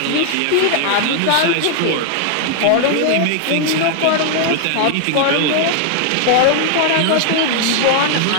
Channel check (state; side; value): different; both; correlation 0.00